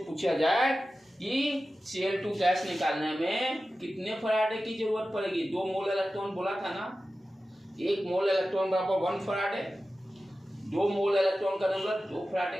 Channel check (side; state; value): both; normal; correlation 0.94